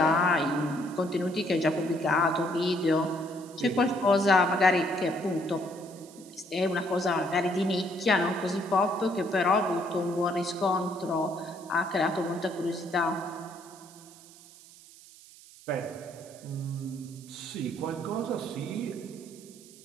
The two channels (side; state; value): right; noise; hiss, 21 dB below the sound